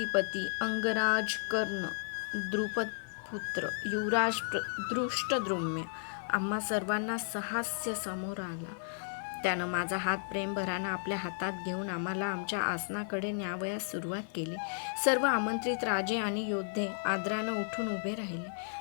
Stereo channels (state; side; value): silent; right; digital silence